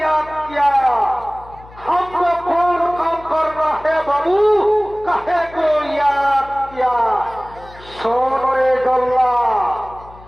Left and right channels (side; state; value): left; noise; hum, 21 dB below the sound